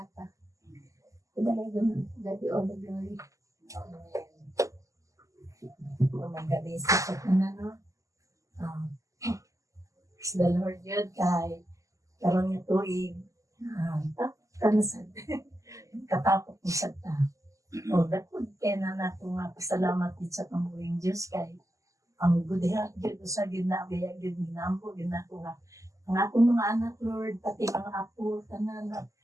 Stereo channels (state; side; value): late; left; 0.16 ms